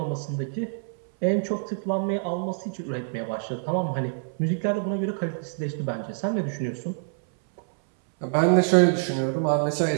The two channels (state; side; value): silent; left; 60 dB below the other